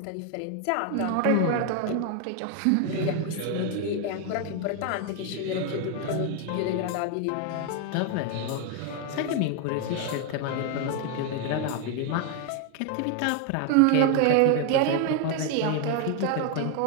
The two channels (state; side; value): different; both; correlation 0.01